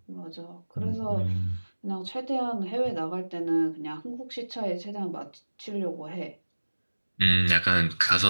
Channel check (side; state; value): both; inverted; correlation -1.00